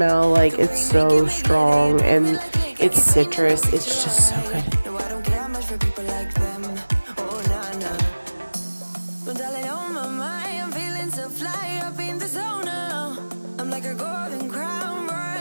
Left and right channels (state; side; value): inverted; both; correlation -1.00